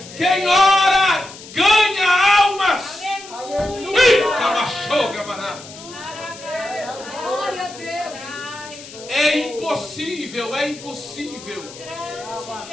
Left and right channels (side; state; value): left; noise; hiss, 16 dB below the sound